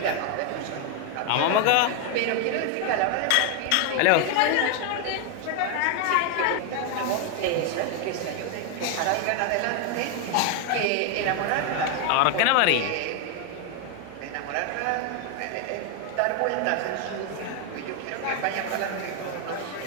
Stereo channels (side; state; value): both; different; correlation 0.01